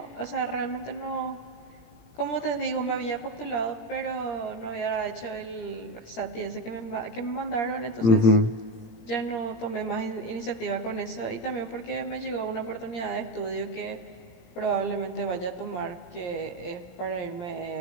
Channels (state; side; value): late; right; 17 ms